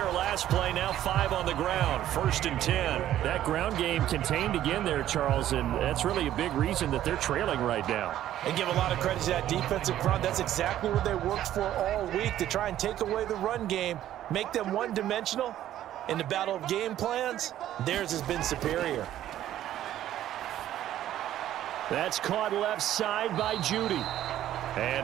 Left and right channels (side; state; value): left; quieter; 12.4 dB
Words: last play, now 5 on the ground. 1st and 10. That ground game contained again there, Charles, and that's really a big reason that they're trailing right now. They give a lot of credit to that defensive front. That's exactly what they worked for all week, to try and take away the run game, make them one-dimensional. In the battle of game plans, theirs has been superior. That's caught left side by Judy.